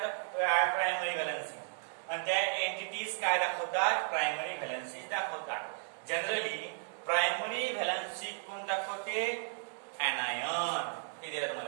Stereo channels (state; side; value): silent; left; 55 dB below the other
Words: primary valency. आणि त्या एंटिटीज काय दाखवतात प्रायमरी व्हॅलन्सीज दाखवतात. जनरली प्रायमरी व्हॅलन्सी कोण दाखवते anion. हे दिलं